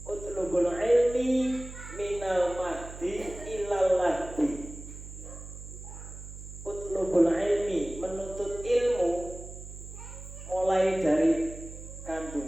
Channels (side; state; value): right; noise; hum, 13 dB below the sound